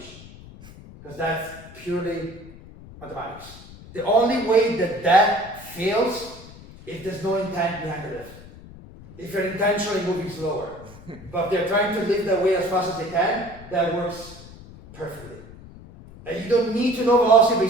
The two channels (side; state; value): left; noise; rumble, 18 dB below the sound